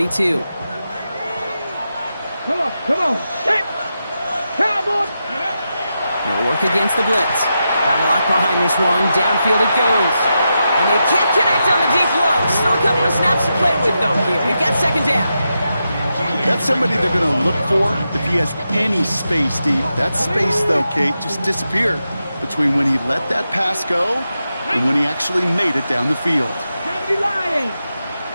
Come on. Hit. Cowboy. They'll work against the blitz. Got a lock behind this one. Downfield it goes. And they can't connect on the deep low. Still a couple of snaps to play with, though, here. We've got 2nd down. That's somebody they're going to look for if he has any space deep. That space, though, Kate, just disappeared between when he let that pass go and when he actually made it down the field.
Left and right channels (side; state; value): both; inverted; correlation -0.88